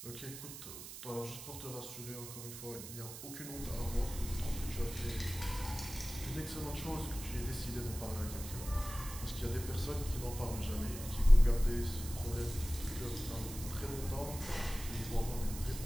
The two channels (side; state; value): right; noise; hiss, 11 dB below the sound